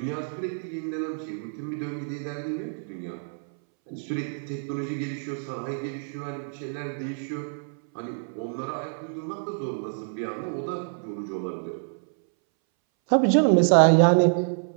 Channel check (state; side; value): silent; left; 60 dB below the other